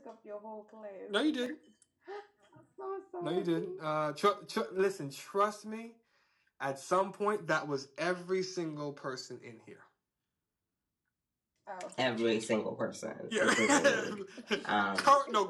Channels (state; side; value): identical; both; correlation 1.00